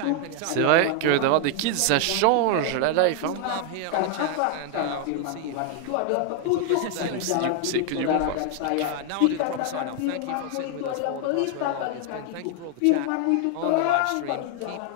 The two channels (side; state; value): both; different; correlation 0.00